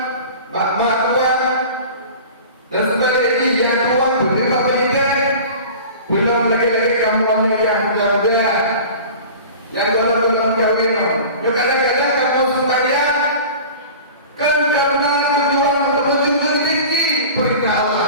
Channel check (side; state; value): both; inverted; correlation -0.39